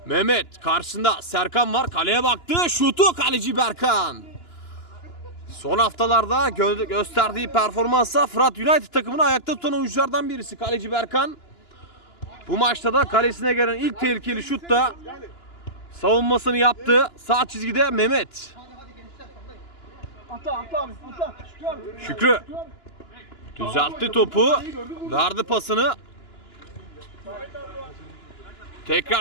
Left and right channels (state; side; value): late; right; 2.9 ms